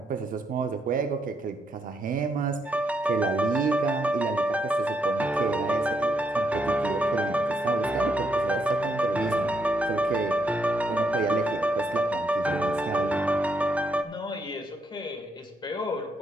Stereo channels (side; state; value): both; normal; correlation 0.76